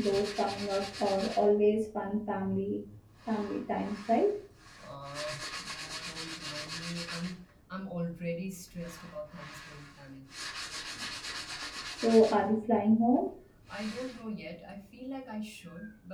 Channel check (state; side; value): identical; both; correlation 1.00